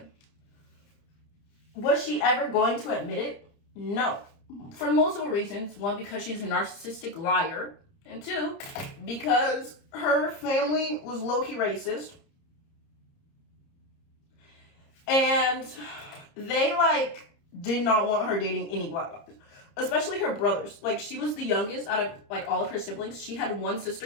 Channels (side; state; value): right; late; 30 ms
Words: Was she ever going to admit it? No. For multiple reasons. One, because she's a narcissistic liar. And two, because her family was low-key racist. And they, like, did not want her dating any black guys. Especially her brothers. Like, she was the youngest out of, like, all of her siblings. She had one